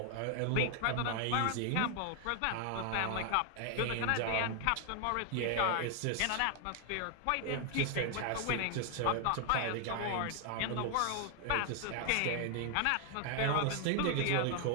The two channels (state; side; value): different; both; correlation 0.00